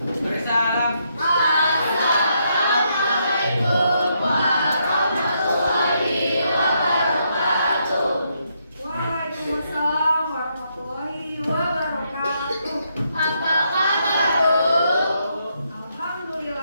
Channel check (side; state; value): both; inverted; correlation -0.77